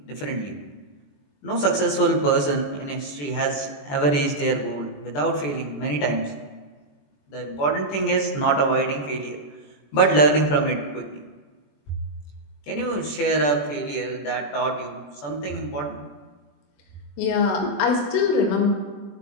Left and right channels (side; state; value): right; late; 21 ms